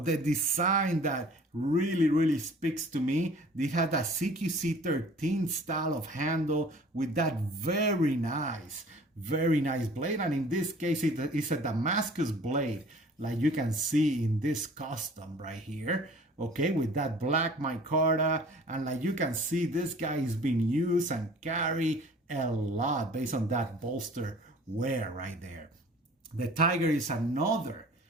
design that really speaks to me. They had a CQC 13 style of handle with that very nice blade. And in this case, it's a Damascus blade, like you can see in this custom right here. Okay, with that black micarta, and like you can see, this guy is being used and carried a lot based on that bolster wear right there. The Tiger is another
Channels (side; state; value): both; normal; correlation 0.49